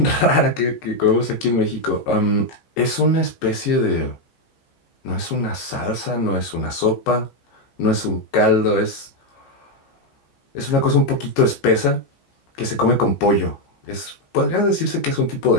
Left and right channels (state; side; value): late; right; 15 ms